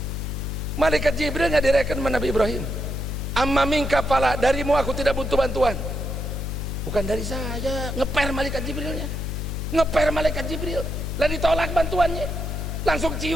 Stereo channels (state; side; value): noise; left; hum, 4 dB below the sound